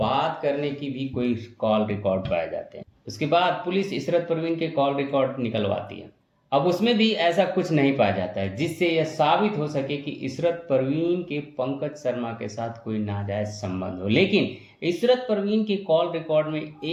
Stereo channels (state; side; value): identical; both; correlation 1.00